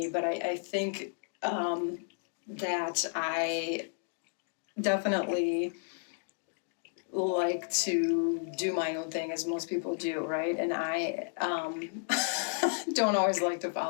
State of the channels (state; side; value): silent; right; digital silence